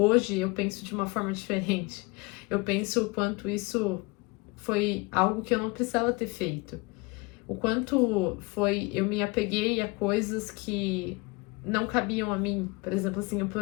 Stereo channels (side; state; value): right; quieter; 25.9 dB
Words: eu penso de uma forma diferente. Eu penso o quanto isso foi algo que eu não precisava ter feito. O quanto foi, eu me apeguei a coisas que não cabiam a mim. Por exemplo, assim, eu